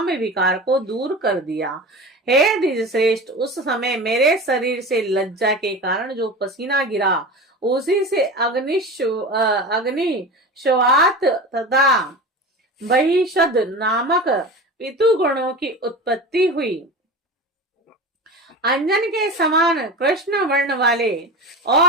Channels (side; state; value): both; normal; correlation 0.30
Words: विकार को दूर कर दिया। हे द्विज श्रेष्ठ, उस समय मेरे शरीर से लज्जा के कारण जो पसीना गिरा उसी से अग्नि श्वात तथा बहिषद नामक पितु गुणों की उत्पत्ति हुई। अंजन के समान कृष्ण वर्ण वाले